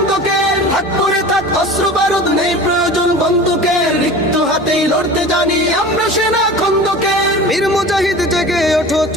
থাক করে থাক অস্ত্র বারুদ নেই প্রয়োজন বন্দুকের, রিক্ত হাতেই লড়তে জানি আমরা সেনা খন্দকের। বীর মুজাহিদ জেগে ওঠো,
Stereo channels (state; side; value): normal; both; correlation 0.36